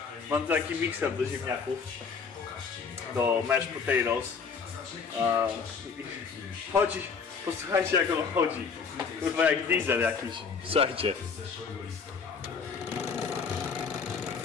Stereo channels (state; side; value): quieter; right; 5.5 dB